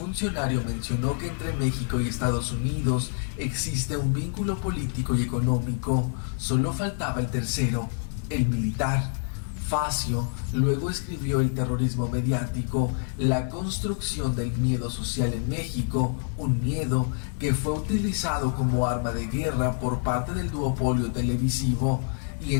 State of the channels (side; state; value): right; silent; 60 dB below the other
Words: mencionó que entre México y Estados Unidos existe un vínculo político y económico. Solo faltaba el tercero, el militar. Facio luego escribió El terrorismo mediático, la construcción del miedo social en México, un miedo que fue utilizado como arma de guerra por parte del duopolio televisivo. Y